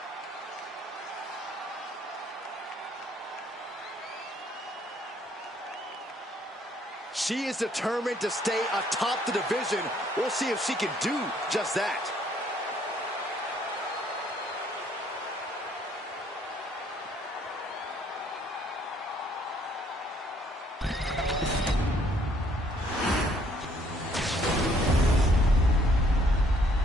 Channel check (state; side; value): normal; both; correlation 0.65